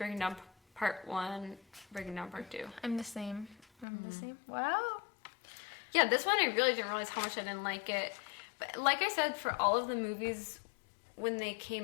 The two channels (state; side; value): drops out; right; at 3.9 s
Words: Down Part 1, Breaking Down Part 2. I'm the same. Wow. Yeah, this one I really didn't realize how much I didn't like it. But like I said, for all of the movies, when they